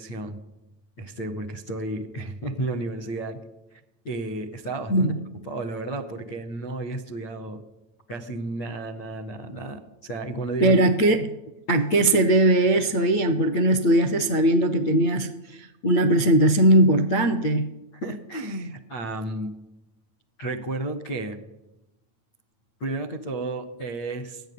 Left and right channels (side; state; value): right; late; 9.0 ms